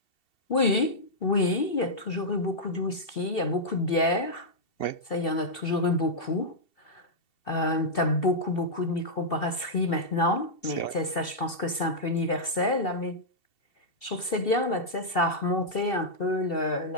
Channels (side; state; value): right; late; 2.7 ms